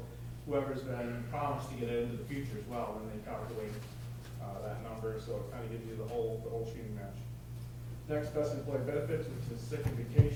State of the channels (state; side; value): identical; both; correlation 1.00